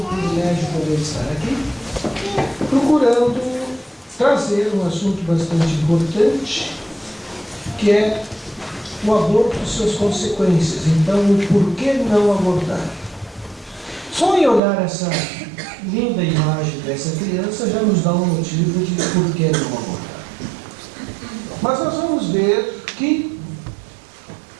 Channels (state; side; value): drops out; left; at 14.6 s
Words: privilégio poder estar aqui, procurando trazer um assunto bastante importante, que é o aborto e suas consequências. Então, o porquê não abortar? Só em olhar essa linda imagem dessa criança já nos dá um motivo de por que não abortar. Mas nós vamos ver que